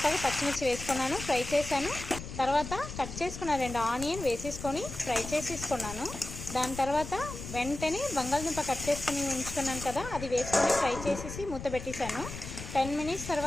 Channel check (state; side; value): noise; left; rumble, 9 dB below the sound